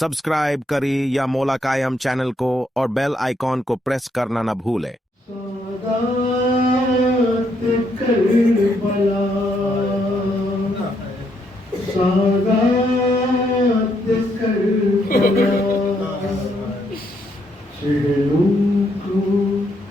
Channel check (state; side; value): normal; both; correlation 0.75